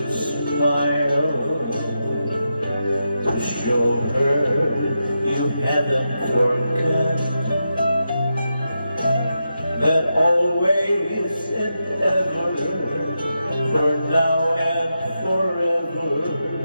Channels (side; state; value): both; inverted; correlation -0.87